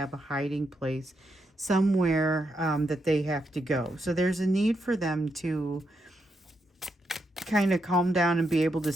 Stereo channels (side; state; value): both; normal; correlation 0.81